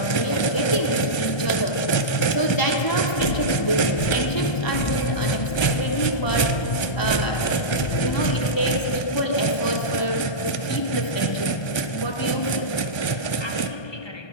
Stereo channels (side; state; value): right; late; 1.3 ms